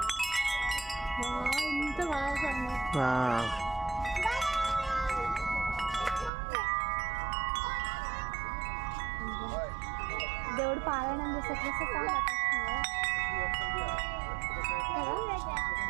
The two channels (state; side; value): drops out; left; at 6.3 s